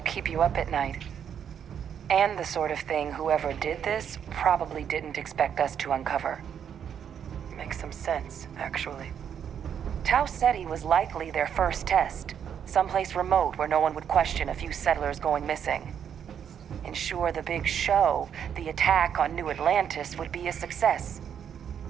you up at night. And the sort of thing whoever did this probably didn't expect us to uncover. Makes some sense, actually. Tau Ceti was likely their first test. Someplace remote where no one would question a few settlers going missing. Ensure the big show, the attack on New Atlantis, would be a success.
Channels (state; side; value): quieter; left; 8.4 dB